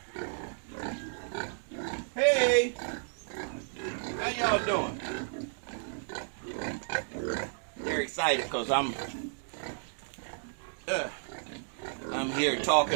Hey! How y'all doing? They're excited because I'm here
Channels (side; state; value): left; silent; digital silence